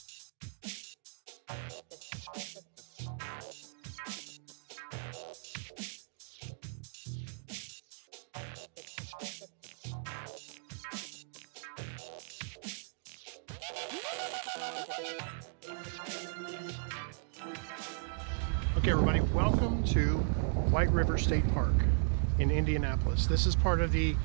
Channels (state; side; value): silent; left; digital silence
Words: Okay, everybody, welcome to White River State Park in Indianapolis. This is part of the